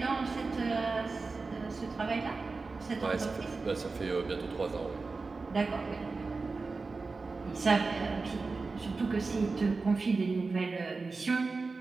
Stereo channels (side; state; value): left; quieter; 4.0 dB